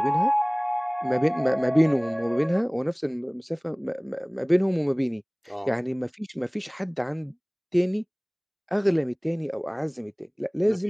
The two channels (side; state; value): both; identical; correlation 1.00